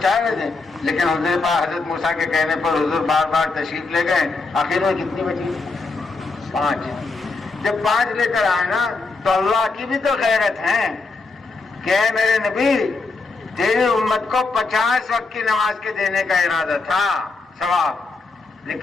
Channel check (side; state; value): right; quieter; 3.9 dB